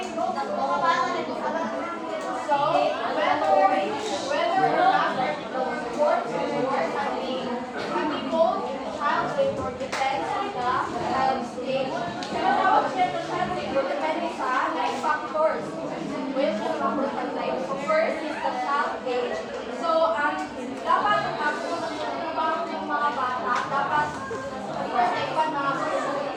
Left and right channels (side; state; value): both; identical; correlation 1.00